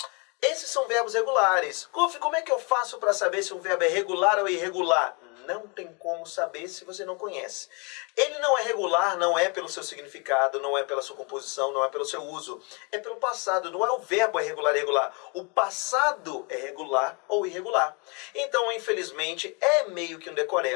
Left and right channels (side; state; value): right; quieter; 32.5 dB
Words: Esses são verbos regulares. Golf, como é que eu faço para saber se um verbo é regular ou irregular? Não tem como saber se você não conhece. Ele não é regular, não é pelo seu significado, não é pela sua composição, não é pelo seu uso. É pelo passado, não é o verbo é regular ou irregular. O passado é regular ou irregular. Então, infelizmente, é meio que um